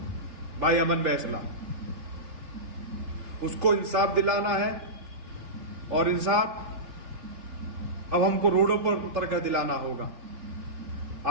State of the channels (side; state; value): left; late; 3.1 ms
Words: भाई अमन बैसला, उसको इंसाफ दिलाना है। और इंसाफ अब हमको रोडों पर उतर कर दिलाना होगा।